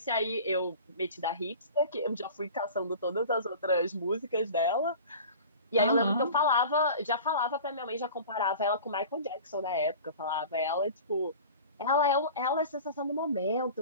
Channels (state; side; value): inverted; both; correlation -0.39